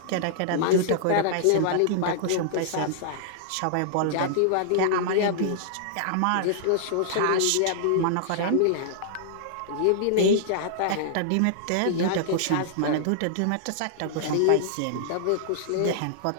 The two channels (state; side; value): different; both; correlation -0.01